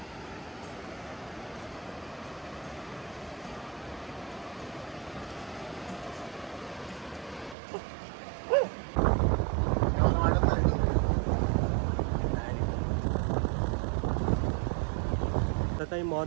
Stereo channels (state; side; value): drops out; left; at 7.6 s